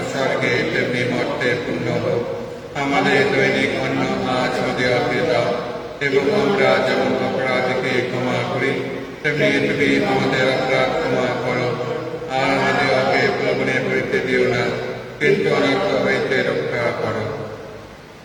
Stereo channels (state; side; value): identical; both; correlation 1.00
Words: স্বর্গে তেমনি মর্তে পূর্ণ হোক। আমাদের দৈনিক অন্ন আজ আমাদেরকে দাও, এবং আমরা যেমন অপরাধীকে ক্ষমা করি তেমনি তুমি আমাদের অপরাধ ক্ষমা করো। আর আমাদেরকে প্রলোভনে পড়িতে দিও না, কিন্তু অনর্থ হইতে রক্ষা করো।